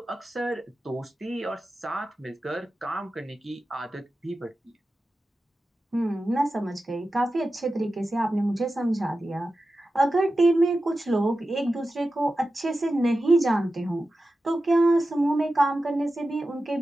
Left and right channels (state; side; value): normal; both; correlation 0.93